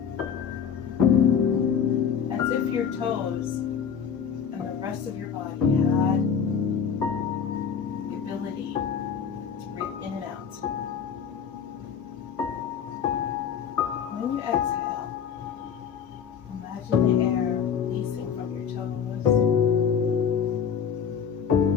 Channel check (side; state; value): right; quieter; 7.3 dB